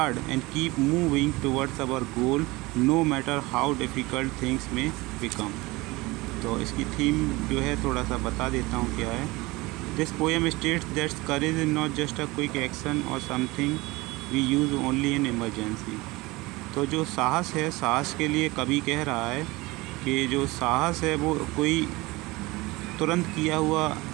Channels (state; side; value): quieter; left; 22.1 dB